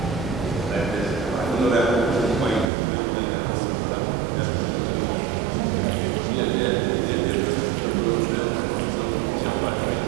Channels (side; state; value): left; drops out; at 2.7 s